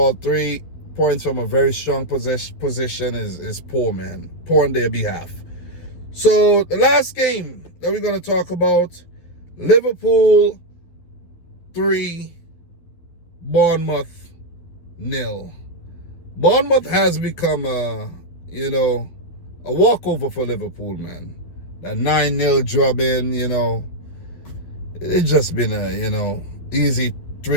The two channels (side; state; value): right; late; 12 ms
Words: 3 points from a very strong position is poor, man. Poor on their behalf. So, the last game that we're going to talk about, Liverpool 3, Bournemouth 0. Bournemouth has become a walkover for Liverpool, man. That 9-0 drubbing, it's just been a, easy